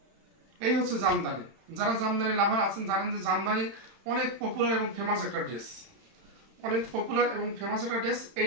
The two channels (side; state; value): left; late; 31 ms